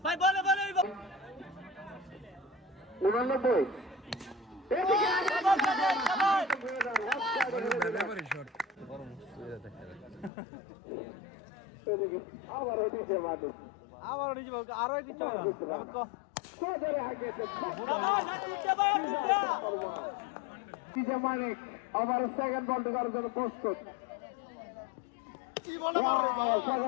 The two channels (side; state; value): right; drops out; at 10.3 s